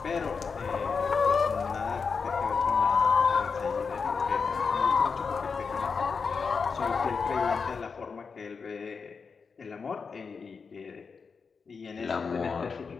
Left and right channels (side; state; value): right; quieter; 5.3 dB